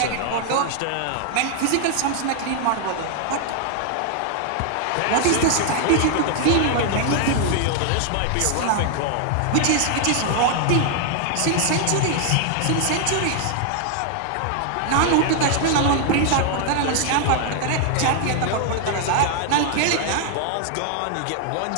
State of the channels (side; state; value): both; different; correlation 0.00